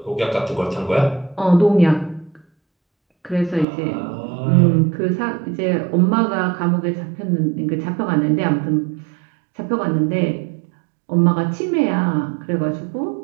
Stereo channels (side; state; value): left; drops out; at 3.7 s